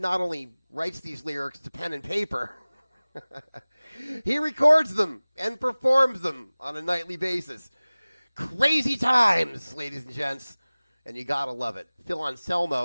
only writes these lyrics to pen and paper, he records them and performs them on a nightly basis. Crazy times, ladies and gents. And you gotta love it. Phil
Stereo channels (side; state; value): both; inverted; correlation -0.99